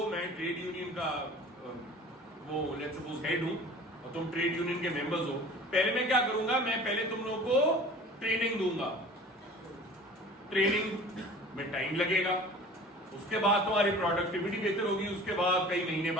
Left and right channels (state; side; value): normal; both; correlation 0.43